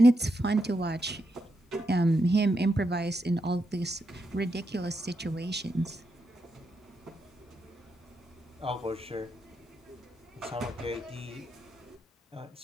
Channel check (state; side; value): normal; both; correlation 0.83